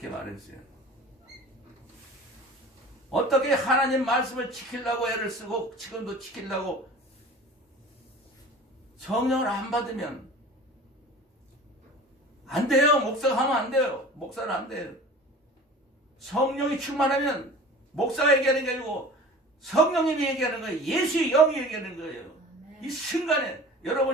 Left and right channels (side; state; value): both; normal; correlation 0.41